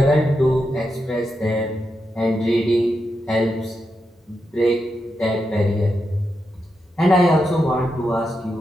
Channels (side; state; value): both; normal; correlation 0.86